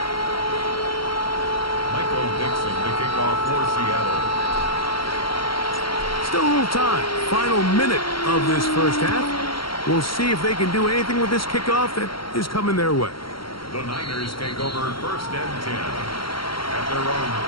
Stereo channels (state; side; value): late; right; 0.73 ms